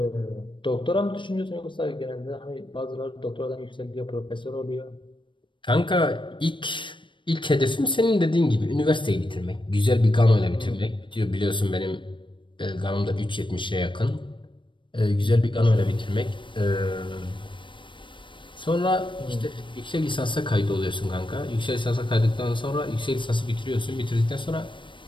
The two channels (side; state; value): right; late; 0.24 ms